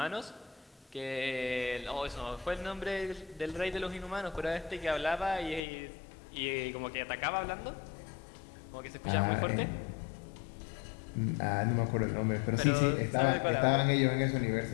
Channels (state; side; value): drops out; right; at 5.6 s